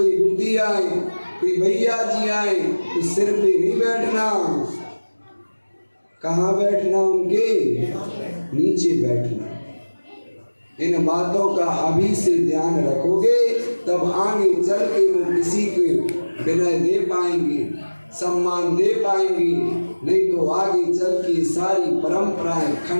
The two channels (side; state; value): both; inverted; correlation -1.00